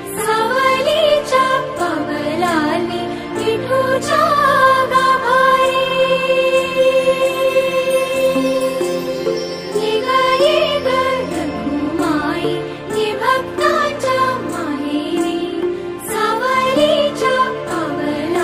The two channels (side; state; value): both; identical; correlation 1.00